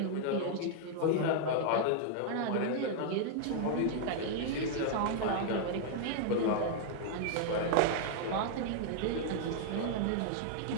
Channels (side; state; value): both; different; correlation -0.01